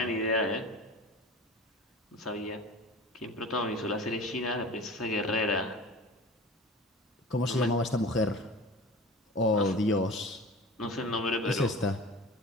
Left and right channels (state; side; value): normal; both; correlation 0.36